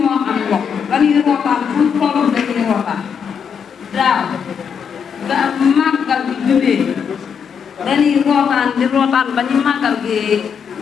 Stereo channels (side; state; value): right; quieter; 6.9 dB